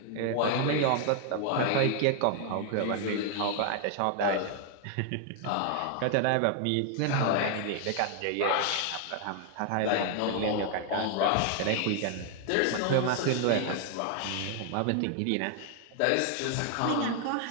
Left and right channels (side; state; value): both; different; correlation 0.00